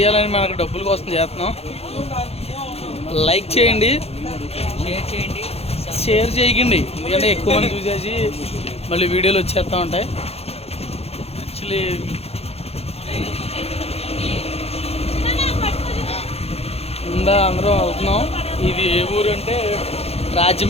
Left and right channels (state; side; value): late; right; 0.29 ms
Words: మనకు డబ్బుల కోసం చేస్తున్నాం. లైక్ చేయండి, షేర్ చేయకండి, ఎందుకంటే ఎక్కువ మంది చూసేసి మళ్ళీ వీడియోలు వచ్చేస్తూ ఉంటాయి. యాక్చువల్లీ అందరం వెళ్తున్నాం. ఇది ఏ ఊరు అంటే